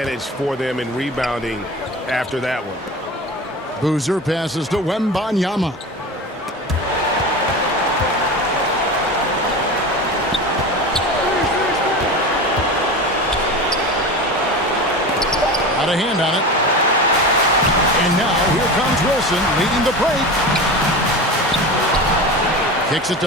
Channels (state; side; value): normal; both; correlation 0.29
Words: for them in rebounding after that one. Boozer passes to Wembanyama. Got a hand on it. And now here comes Wilson leading the break. Kicks it